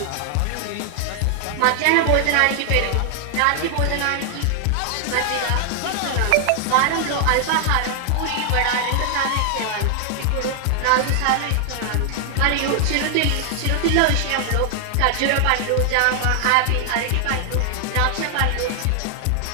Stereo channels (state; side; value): different; both; correlation 0.00